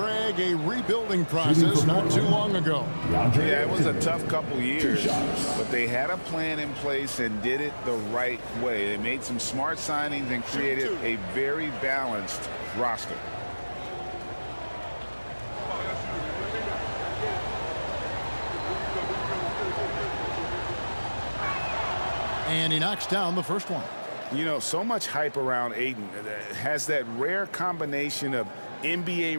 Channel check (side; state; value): both; inverted; correlation -1.00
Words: a rebuilding process not too long ago. Yeah, it was a tough couple years, but they had a plan in place and did it the right way. They made some smart signings and created a very balanced roster. And he knocks down the first one. You know, so much hype around Ayton. Has that rare combination of